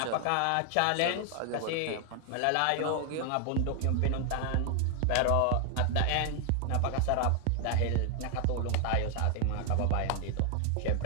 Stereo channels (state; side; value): different; both; correlation 0.00